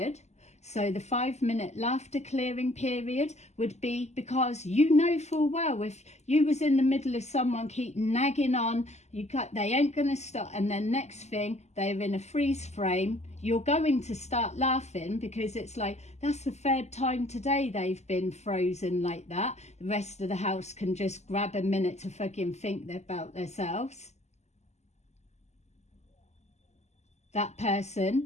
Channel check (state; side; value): late; right; 0.33 ms